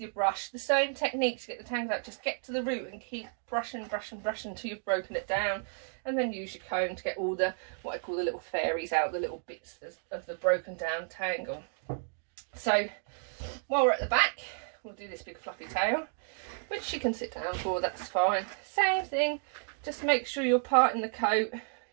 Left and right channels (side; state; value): left; silent; 56 dB below the other